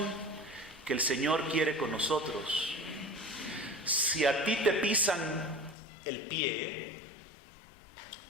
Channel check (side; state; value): right; drops out; at 5.8 s